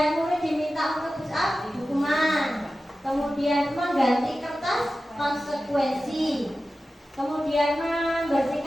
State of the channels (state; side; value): normal; both; correlation 0.94